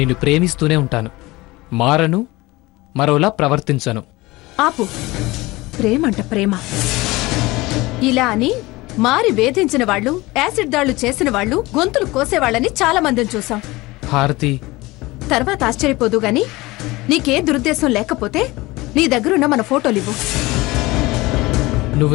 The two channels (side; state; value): right; quieter; 20.9 dB